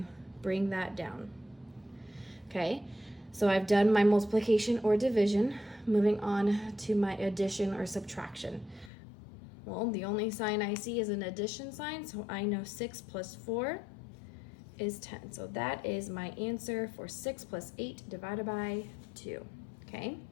bring that down. Okay, so I've done my multiplication or division. Moving on to my addition or subtraction. Well, the only sign I see is an addition sign, so I know 6 plus 4 is 10. So that is my answer for 6 plus 8 divided by 2. Okay,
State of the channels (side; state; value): right; drops out; at 8.9 s